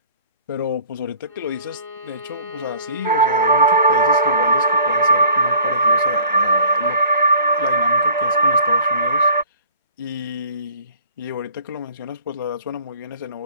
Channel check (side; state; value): both; inverted; correlation -0.50